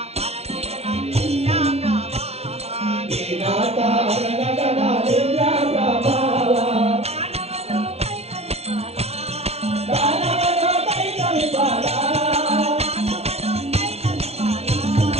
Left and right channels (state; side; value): late; left; 0.31 ms